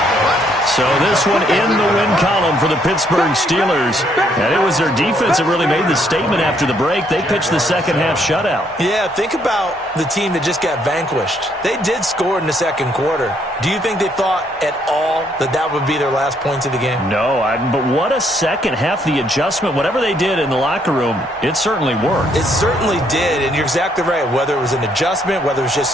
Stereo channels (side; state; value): both; normal; correlation 0.70